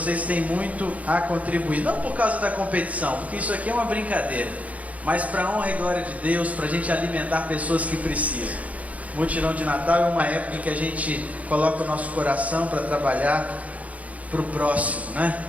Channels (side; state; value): left; late; 0.069 ms